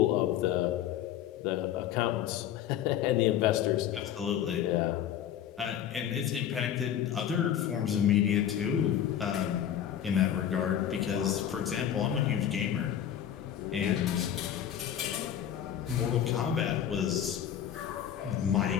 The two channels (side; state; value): right; quieter; 10.1 dB